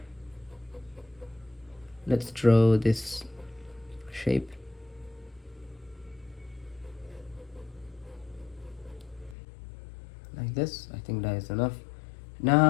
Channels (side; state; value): right; drops out; at 9.3 s